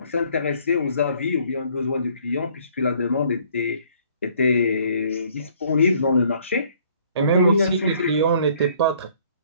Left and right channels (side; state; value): both; inverted; correlation -0.61